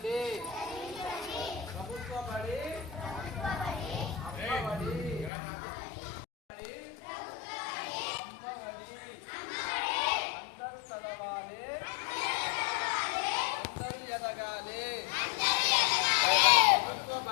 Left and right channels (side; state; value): right; drops out; at 5.3 s